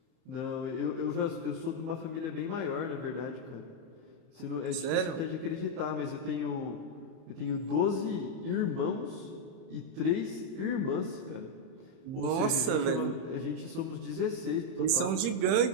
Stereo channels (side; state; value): left; late; 31 ms